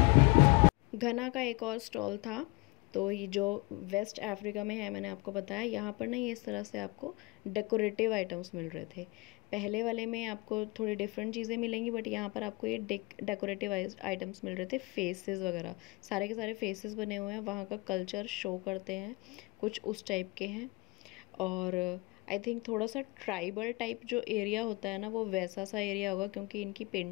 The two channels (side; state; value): right; quieter; 25.9 dB